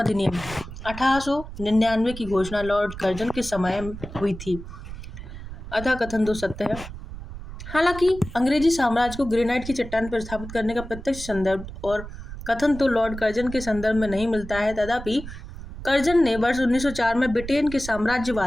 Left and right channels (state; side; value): noise; right; rumble, 11 dB below the sound